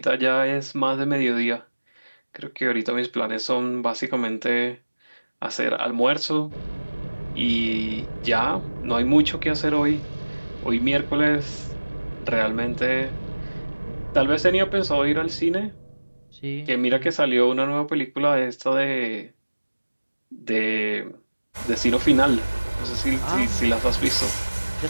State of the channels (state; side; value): inverted; both; correlation -1.00